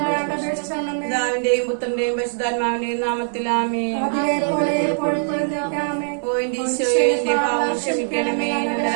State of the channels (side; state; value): left; silent; 58 dB below the other